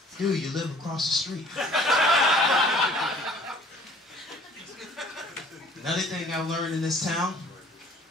Dude, you live across the street. Another thing I learned in this town,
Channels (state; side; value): normal; both; correlation 0.54